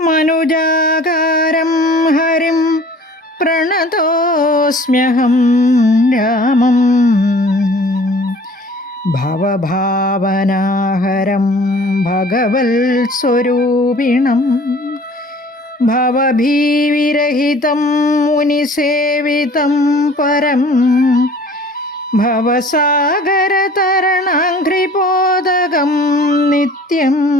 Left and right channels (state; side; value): normal; both; correlation 0.49